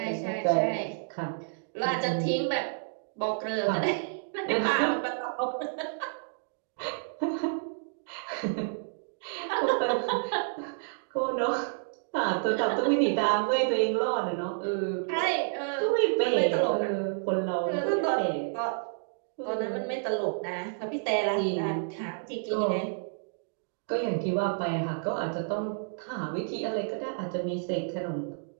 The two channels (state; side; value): silent; left; digital silence